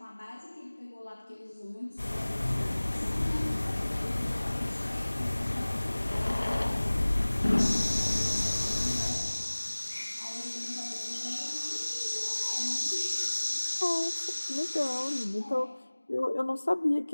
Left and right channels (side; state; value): both; inverted; correlation -1.00